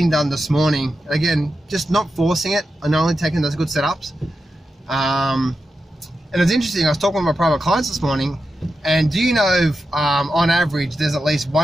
done this morning. Again, just not forcing it and only taking those good setups. And it's interesting, I was talking with my private clients this morning, and do you know, on average, there's at least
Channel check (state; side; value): normal; both; correlation 0.89